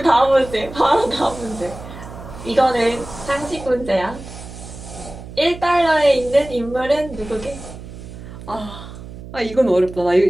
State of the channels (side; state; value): right; noise; hum, 14 dB below the sound